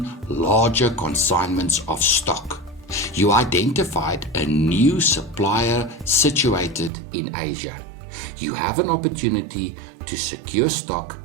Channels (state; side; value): drops out; left; at 6.9 s